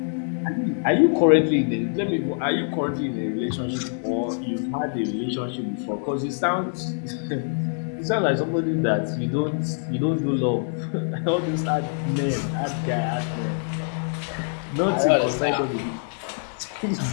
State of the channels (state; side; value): silent; right; digital silence